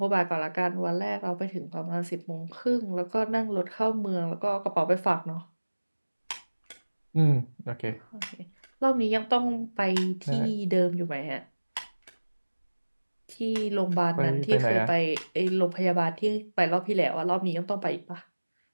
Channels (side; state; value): both; inverted; correlation -1.00